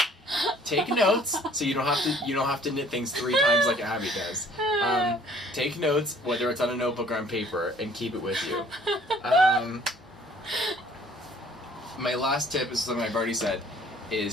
Take notes so you don't have to knit things 3 times like Abby does. Take notes, whether it's on a notebook or on paper, and keep it with you. My last tip is something I've already said,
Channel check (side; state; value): both; normal; correlation 0.56